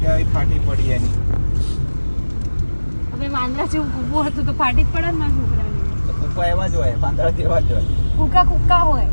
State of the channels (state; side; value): inverted; both; correlation -1.00